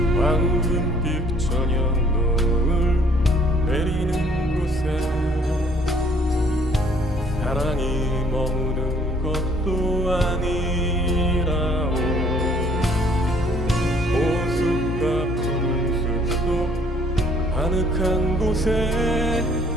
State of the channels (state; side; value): normal; both; correlation 0.60